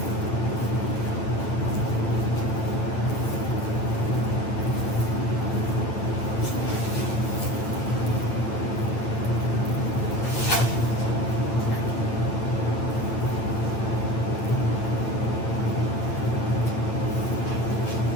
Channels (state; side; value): late; right; 8.9 ms